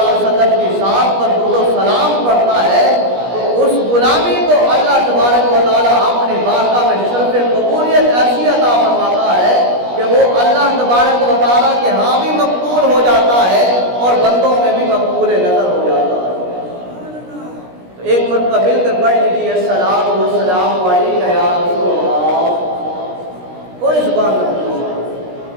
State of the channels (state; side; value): late; left; 17 ms